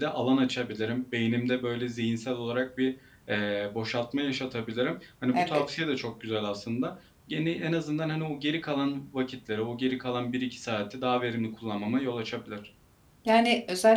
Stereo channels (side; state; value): both; identical; correlation 1.00